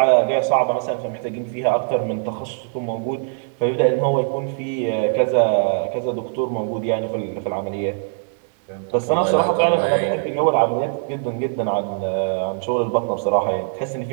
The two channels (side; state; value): left; silent; digital silence